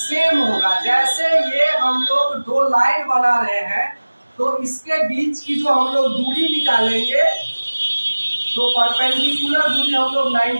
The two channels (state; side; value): inverted; both; correlation -1.00